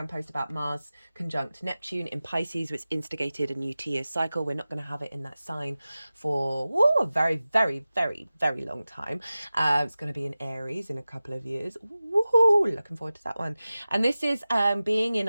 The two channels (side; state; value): both; inverted; correlation -0.96